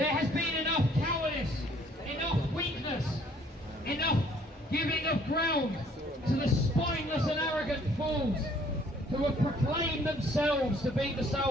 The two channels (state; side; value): normal; both; correlation 0.60